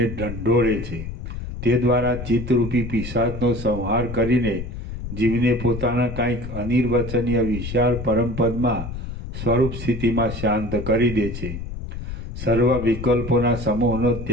ઢંઢોળે છે. તે દ્વારા ચિત્તરૂપી પિશાચનો સંહાર કરીને જીવને પોતાના કંઈક અનિર્વચનીય વિશાળ પરમપદમાં સ્વરૂપ સ્થિતિમાં શાંત કરી દે છે. સર્વ વિકલ્પોના સમૂહનો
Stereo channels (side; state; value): left; noise; rumble, 8 dB below the sound